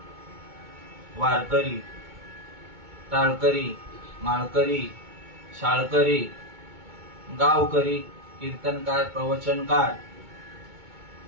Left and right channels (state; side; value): late; left; 2.2 ms